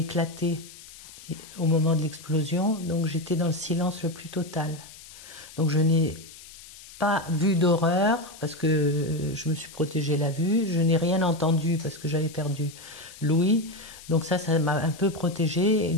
au moment de l'explosion, donc j'étais dans le silence le plus total. Donc je n'ai pas vu d'horreur parce que je me suis protégée la vue, je n'ai rien entendu parce que j'avais perdu l'ouïe, donc ça m'a un peu protégée. Et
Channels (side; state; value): left; noise; hiss, 18 dB below the sound